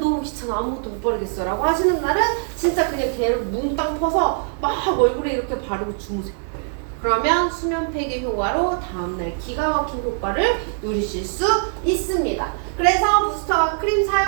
귀찮아. 아무것도 못 바르겠어. 라고 하시는 날은 진짜 그냥 걔를 뭉땅 퍼서 막 얼굴에 이렇게 바르고 주무세요. 그러면 수면 폐기 효과로 다음날 기가 막힌 효과를 누리실 수 있습니다. 그래서 부스터 크림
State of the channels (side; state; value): left; silent; 60 dB below the other